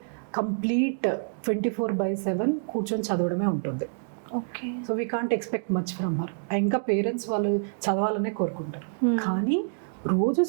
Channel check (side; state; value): left; silent; digital silence